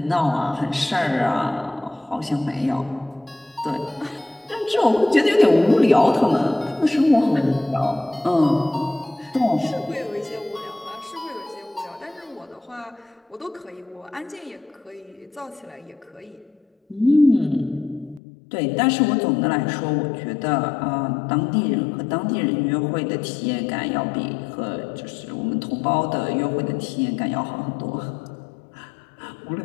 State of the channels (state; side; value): drops out; right; at 18.2 s